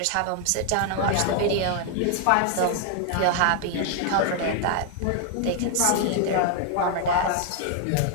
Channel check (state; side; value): different; both; correlation 0.00